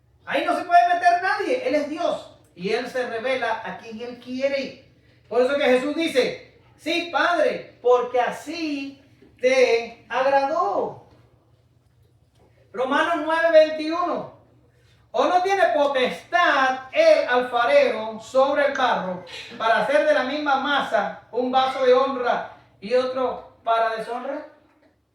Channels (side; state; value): both; identical; correlation 1.00